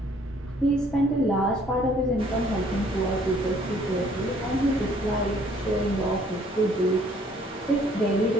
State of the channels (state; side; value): normal; both; correlation 0.60